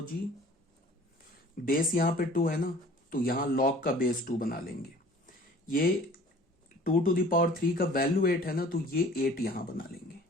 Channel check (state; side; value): normal; both; correlation 0.48